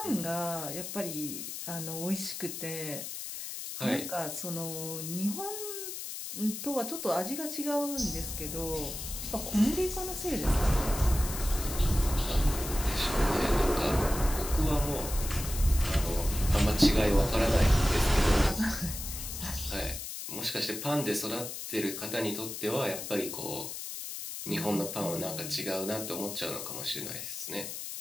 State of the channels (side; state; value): left; noise; hiss, 7 dB below the sound